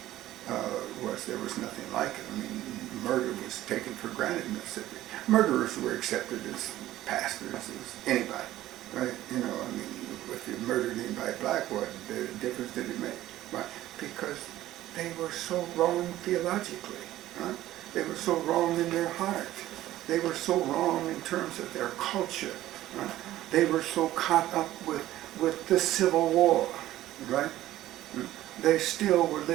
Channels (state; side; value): quieter; left; 14.6 dB